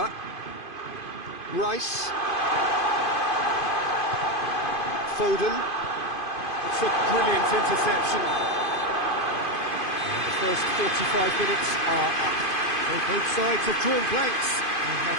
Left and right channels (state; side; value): late; right; 2.5 ms